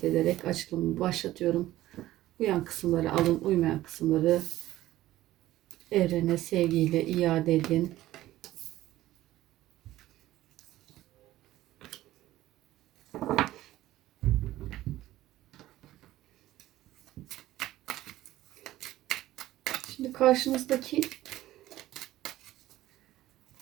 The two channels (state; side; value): quieter; left; 15.2 dB